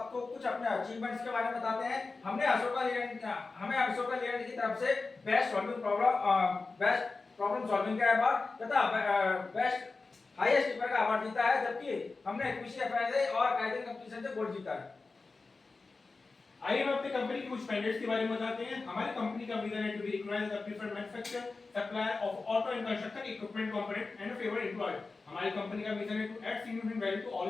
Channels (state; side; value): quieter; right; 3.9 dB